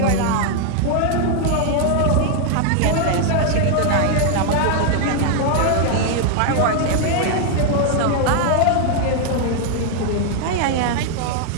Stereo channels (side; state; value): both; different; correlation 0.00